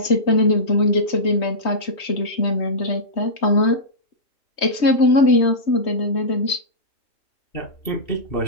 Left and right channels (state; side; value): late; right; 3.2 ms